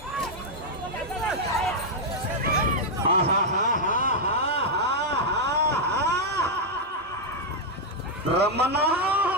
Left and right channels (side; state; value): both; normal; correlation -0.02